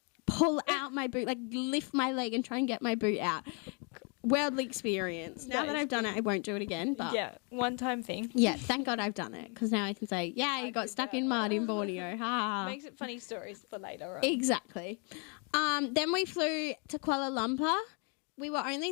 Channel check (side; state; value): right; quieter; 36.3 dB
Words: pull out my boot, like lift my leg and try and get my boot out. Worldly experience. Now that I've done it, I won't do it again. But Yeah, one-time thing. yeah, thank God I've done it because now I can say, yeah, you got stuck in mud in Borneo. Ha. Makes it funny stories for later on. Exactly. Then we flew to Kuala Lumpur. We were